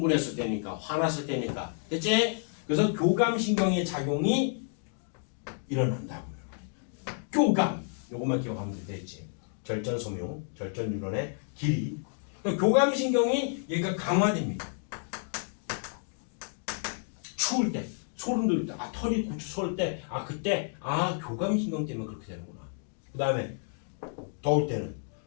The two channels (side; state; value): right; silent; 58 dB below the other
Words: 때니까, 화났을 때니까. 됐지? 그래서 교감신경의 작용이 일어난다고요. 교감. 요것만 기억하면 되겠지. 절전섬유, 절전뉴런의 길이. 교감신경이 얘가 강화됩니다. 추울 때, 소름 돋을 때, 털이 솟을 때, 그때, 교감신경 때문에 그렇게 되는구나. 그 다음에, 더울 때는